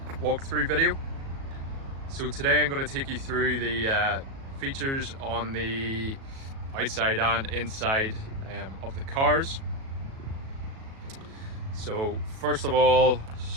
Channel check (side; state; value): left; late; 37 ms